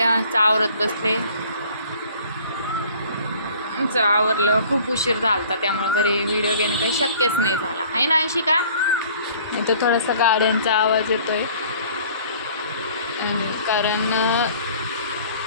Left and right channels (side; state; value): both; inverted; correlation -0.52